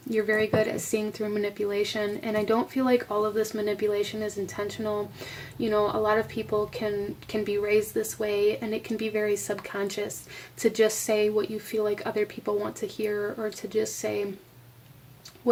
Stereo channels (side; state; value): both; identical; correlation 1.00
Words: You're very good at seeing through manipulation. And I don't feel like all of this manipulation is intentional. You know, a lot of people can be raised this way, and it can be very subconscious to just say what you feel like other people want to hear, or to just say